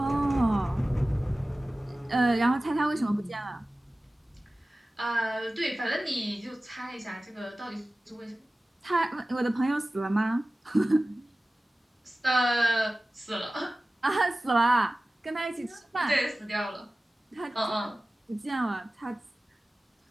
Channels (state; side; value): normal; both; correlation 0.96